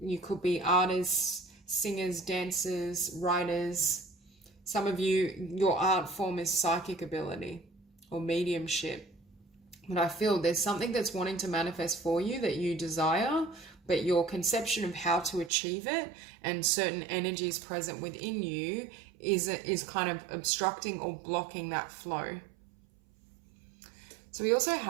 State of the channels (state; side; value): drops out; left; at 15.5 s